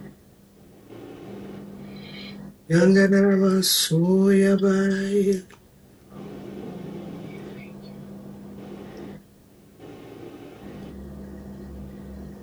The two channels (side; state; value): both; identical; correlation 1.00